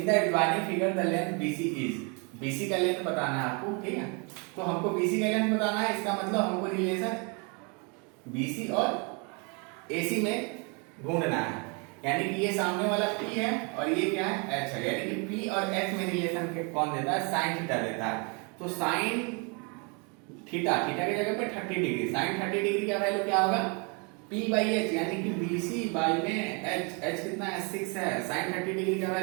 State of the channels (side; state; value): left; quieter; 33.4 dB